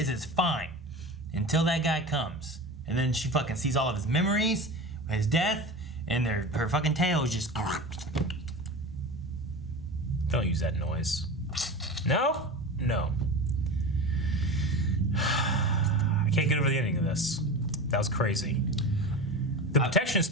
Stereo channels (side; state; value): both; normal; correlation 0.29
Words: is, it's fine until that guy comes, and then she fucking sees all of his memories, his death, and her fucking tail is just. Don't use that noise. No? No. I can't get over the ending of this. That was crazy. The protection